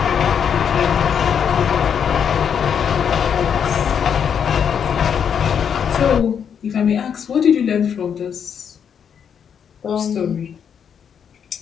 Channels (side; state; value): right; quieter; 7.7 dB